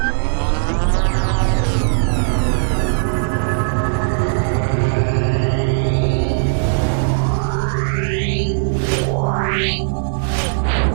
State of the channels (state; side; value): silent; left; 67 dB below the other